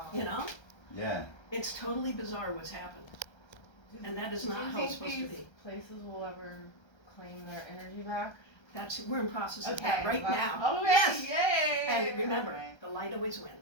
You know, yeah. it's totally bizarre what's happened. And that is Do not you how think it's supposed to these be. places will ever claim their energy back? We're in process of that right well, now. Okay. Yes. Yay. And remember, Okay. the light always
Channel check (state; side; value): late; right; 1.3 ms